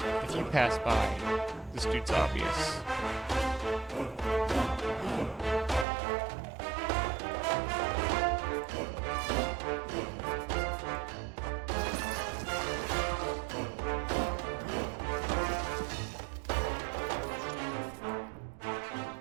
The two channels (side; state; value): left; drops out; at 5.9 s